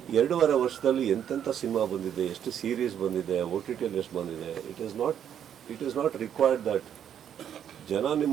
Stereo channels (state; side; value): quieter; left; 9.3 dB